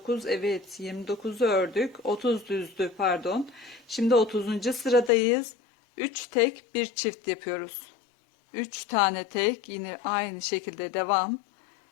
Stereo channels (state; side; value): drops out; right; at 5.1 s